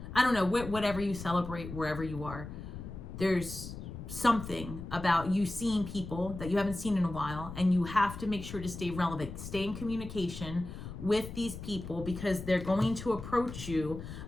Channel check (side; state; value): left; noise; rumble, 10 dB below the sound